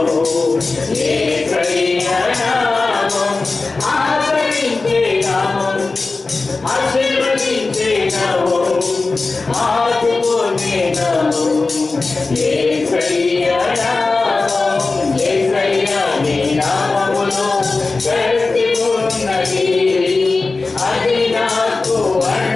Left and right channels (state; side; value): quieter; right; 3.7 dB